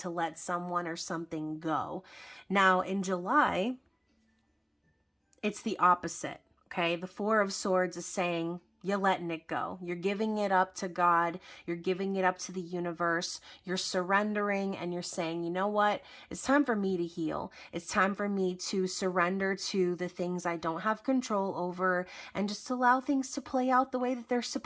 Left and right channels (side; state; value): both; identical; correlation 1.00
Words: let someone or something go. Now, in July, it's the opposite, okay? The Four of Swords is saying, you're letting it go. You're giving it up to God. You're giving it up to the universe. You're surrendering and you're saying, you know what? It's time for me to heal. It's time for me to surrender to the things I don't have control over and just allow things to play out the way that they're